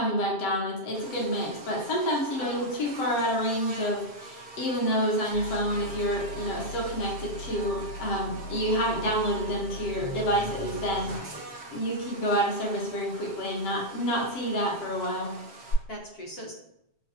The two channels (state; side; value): late; right; 7.4 ms